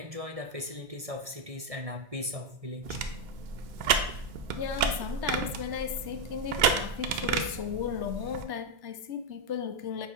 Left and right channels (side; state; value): left; late; 2.1 ms